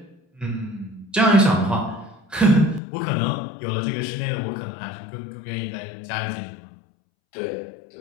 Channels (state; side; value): drops out; right; at 2.8 s